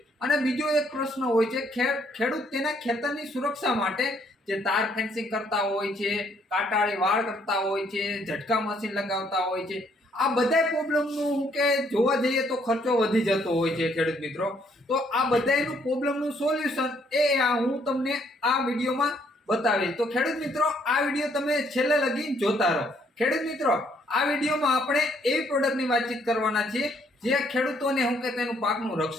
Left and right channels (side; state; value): both; normal; correlation 0.68